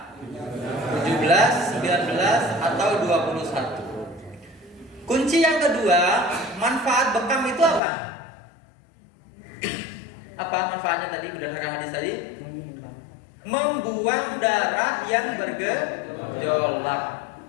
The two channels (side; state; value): right; drops out; at 7.8 s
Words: 17, 19 atau 21. Kunci yang kedua, manfaat bekam itu apa? Apa manfaatnya tadi berdasarkan hadis tadi? Membuang darah yang bergejolak